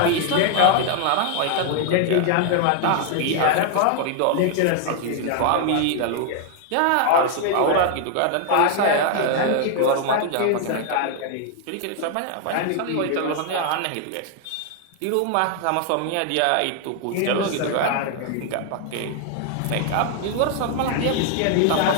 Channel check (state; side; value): different; both; correlation 0.00